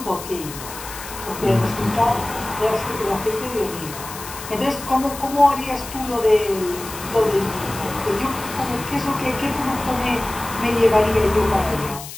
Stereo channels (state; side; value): noise; left; hiss, 12 dB below the sound